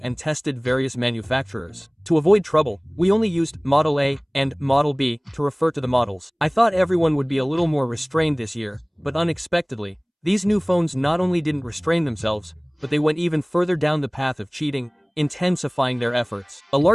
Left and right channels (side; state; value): both; identical; correlation 1.00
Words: and tested various manufacturers. To avoid trouble, we only used Model A and Model B to refer to the models. I thought everyone would be a little more restrained this year, but unexpectedly, these new phones not only didn't restrain themselves, but they went even further down the path of cheating, intensifying their efforts. A